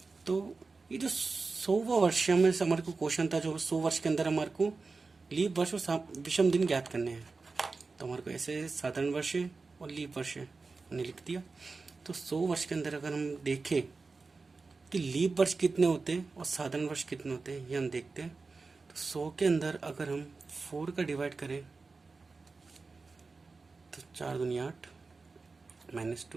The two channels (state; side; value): quieter; left; 4.1 dB